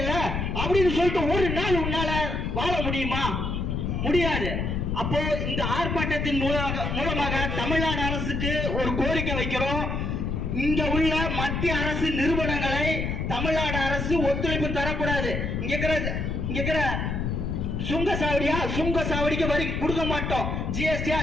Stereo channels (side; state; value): left; noise; rumble, 1 dB below the sound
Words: அப்படின்னு சொல்லிட்டு ஒரு நாள் உன்னால வாழ முடியுமா? முடியாது. அப்போ இந்த ஆர்ப்பாட்டத்தின் மூலமாக தமிழ்நாடு அரசுக்கு ஒரு கோரிக்கை வைக்கிறோம். இங்க உள்ள மத்திய அரசு நிறுவனங்களை தமிழ்நாடு அரசு ஒத்துழைப்பு தரக்கூடாது. இங்க இருக்கிற சுங்க சாவடிக்கு வரி கொடுக்க மாட்டோம்,